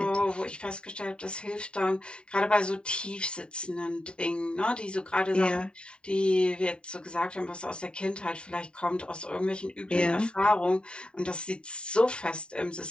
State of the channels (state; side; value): late; right; 0.051 ms